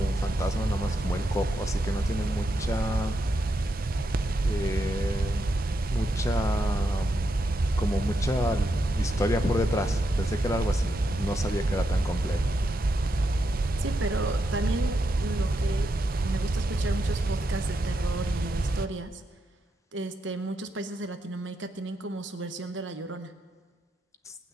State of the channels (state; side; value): normal; both; correlation 0.83